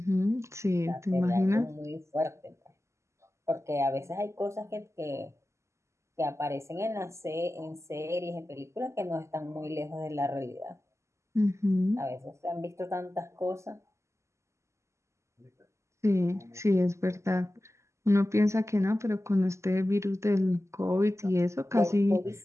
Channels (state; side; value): late; left; 0.13 ms